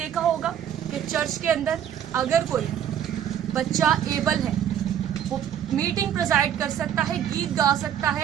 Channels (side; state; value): left; quieter; 9.8 dB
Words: ہوگا کہ چرچ کے اندر اگر کوئی بچہ ایبل ہے, وہ میٹنگ پریزائڈ کر سکتا ہے, گیت گا سکتا